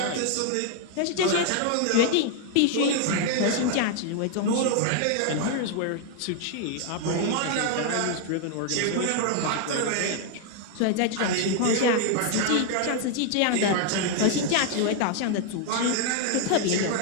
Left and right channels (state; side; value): different; both; correlation 0.00